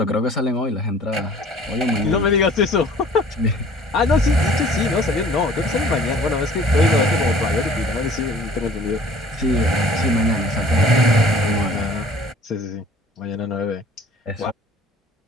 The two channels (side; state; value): both; normal; correlation 0.50